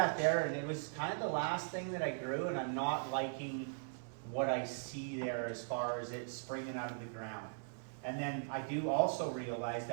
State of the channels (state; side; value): silent; left; 51 dB below the other